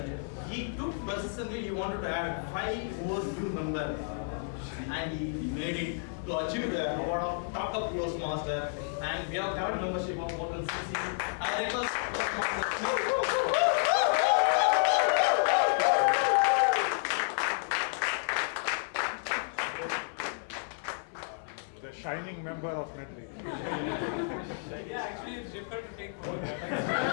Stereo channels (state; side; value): silent; right; 57 dB below the other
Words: He took persistently, he wanted to add 5 more new members and he made it to achieve the award of Top Toastmaster. and we have current membership of more than 6 years. I request The shining member of Medley. Yeah, actually it's difficult to take over.